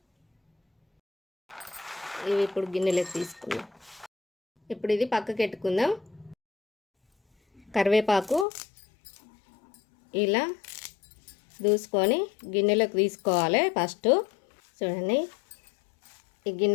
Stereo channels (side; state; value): right; drops out; at 8.5 s